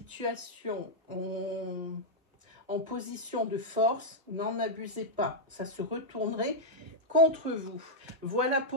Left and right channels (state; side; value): normal; both; correlation -0.04